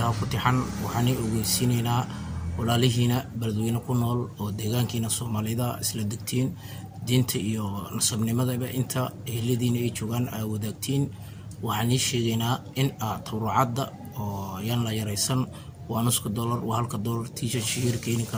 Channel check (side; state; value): both; identical; correlation 1.00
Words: كتحن وحني وجسيننا ولا لهنا بلدوين كنول ودجان كنا الصوماليدا إسلام دينت إيو نصبني ماذا بقى أنت اللي دين إيشوغان أو دكتين وحني شينا إن تورعد يلا يريسن ونسك الدولار وهالك الدولار تيجي شهير كين